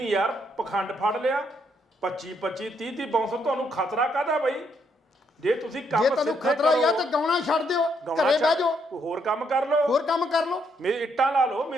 ਯਾਰ ਪਖੰਡ ਫੜ ਲਿਆ, 25 30 ਬਾਉਂਸਰ। ਤੁਹਾਨੂੰ ਖਤਰਾ ਕਾਹਦਾ ਬਈ? ਜੇ ਤੁਸੀਂ ਕੰਮ ਜੇ ਤੁਹਾਨੂੰ ਖਤਰਾ ਹੀ ਆ ਤਾਂ ਗਾਉਣਾ ਛੱਡ ਦਿਓ, ਘਰੇ ਬਹਿ ਜਾਓ, ਕੋਈ ਹੋਰ ਕੰਮ ਕਰ ਲਓ, ਹੋਰ ਕੰਮ ਕਰ ਲਓ, ਇੱਟਾਂ ਲਾ ਲਓ,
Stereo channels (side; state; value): both; normal; correlation 0.74